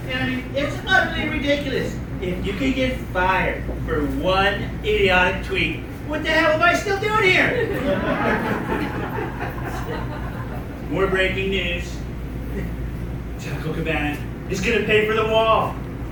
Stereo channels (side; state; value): both; identical; correlation 1.00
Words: and I mean, it's utterly ridiculous. If you could get fired for one idiotic tweet, what the hell am I still doing here? More breaking news. Taco Cabana is going to pay for the wall.